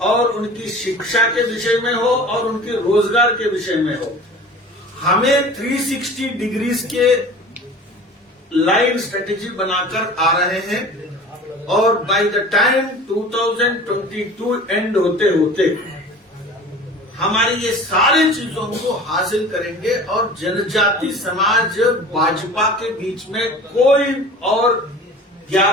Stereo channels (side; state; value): both; normal; correlation 0.40